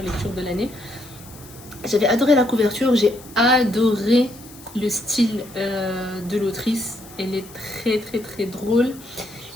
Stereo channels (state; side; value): noise; left; hiss, 20 dB below the sound